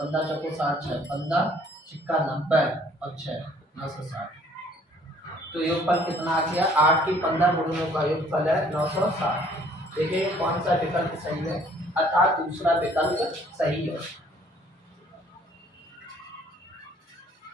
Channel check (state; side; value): normal; both; correlation 0.59